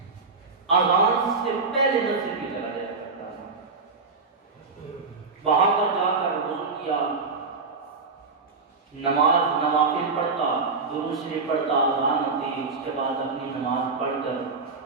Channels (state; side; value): quieter; left; 4.3 dB